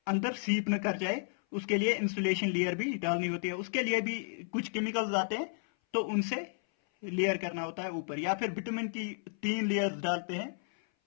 अंदर सीप न कर जाए, उसके लिए इंसुलेशन लेयर भी डालनी होती है। उसके लिए भी कुछ केमिकल्स आते हैं तो उनसे लेयर करना होता है ऊपर, या फिर विटामिन की 3 लेयर्स डालते हैं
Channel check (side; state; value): right; silent; 56 dB below the other